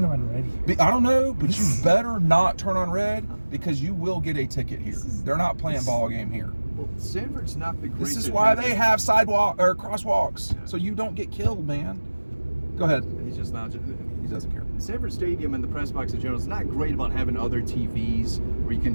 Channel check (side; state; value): both; inverted; correlation -1.00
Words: on red? I don't know, but you better not turn on red because you will get a ticket here. They're not playing ball game here. Well, Sanford's not the greatest. This is why they have sidewalk or crosswalks, so you don't get killed, man. Go ahead. He's just not. He doesn't care. Sanford Stadium and the press box in general is not great about having other TVs where you